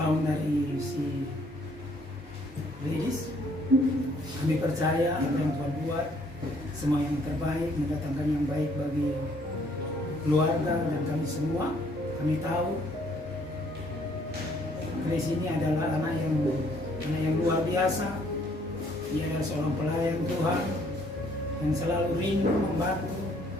dari si Ladies. Kami percaya apa yang Tuhan buat semua yang terbaik, mendatangkan yang baik bagi keluarga dan kami semua. Kami tahu Grace ini adalah anak yang luar biasa. Dia adalah seorang pelayan Tuhan yang selalu rindu membantu,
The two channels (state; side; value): normal; both; correlation 0.64